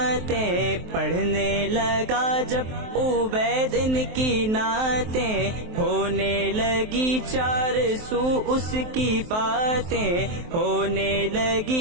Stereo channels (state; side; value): late; left; 23 ms